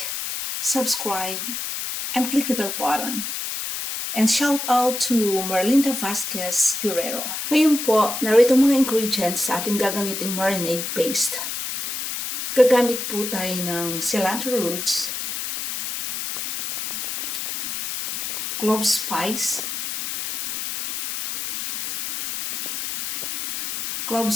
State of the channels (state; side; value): noise; left; hiss, 5 dB below the sound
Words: subscribe, and click the bell button. And shout out to Merlinda Vasquez Guerrero. Ngayon po, narito mga ingredients sa ating gagamiting marinade paste. Gagamit po tayo ng cilantro roots, clove spice,